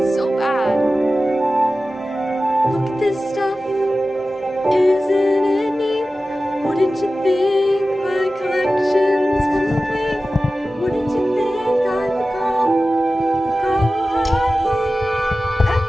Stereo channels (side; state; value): both; normal; correlation 0.95